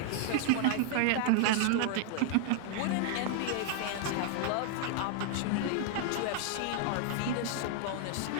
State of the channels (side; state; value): both; different; correlation 0.00